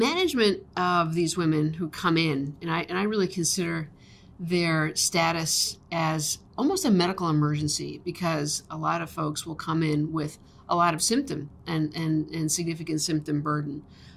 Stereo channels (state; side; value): identical; both; correlation 1.00